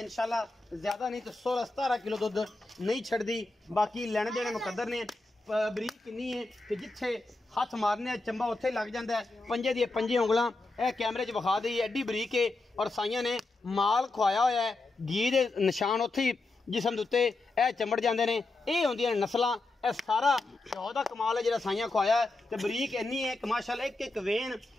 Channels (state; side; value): quieter; right; 3.2 dB